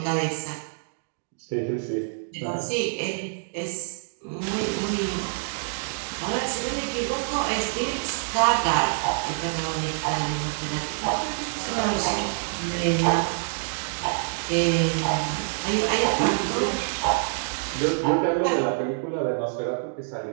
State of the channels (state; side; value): silent; left; digital silence